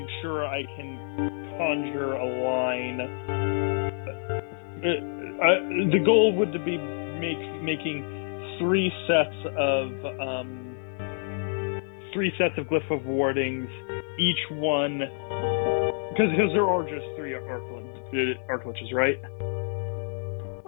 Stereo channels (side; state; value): right; silent; digital silence